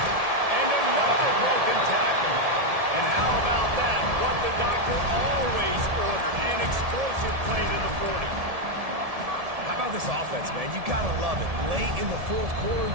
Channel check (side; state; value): left; late; 1.7 ms